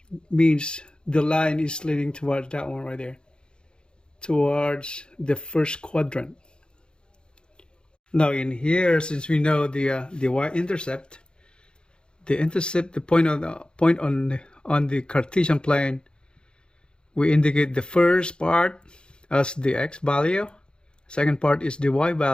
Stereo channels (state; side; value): late; right; 0.050 ms